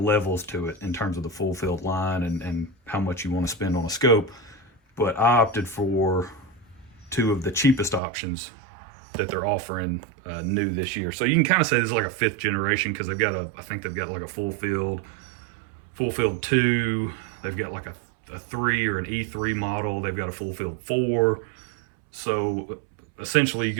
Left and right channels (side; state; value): left; drops out; at 8.0 s